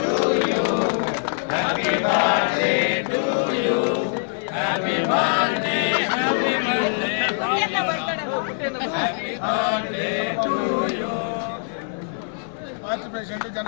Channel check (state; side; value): silent; right; 63 dB below the other